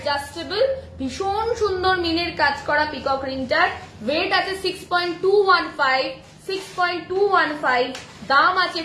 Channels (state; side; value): identical; both; correlation 1.00